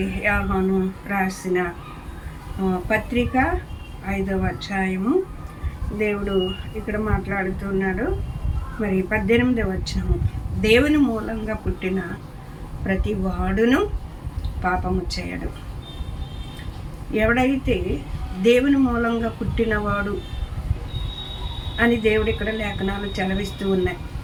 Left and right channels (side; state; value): both; identical; correlation 1.00